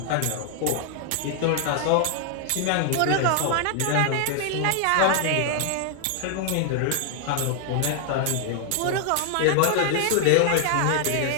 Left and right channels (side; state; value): both; different; correlation 0.00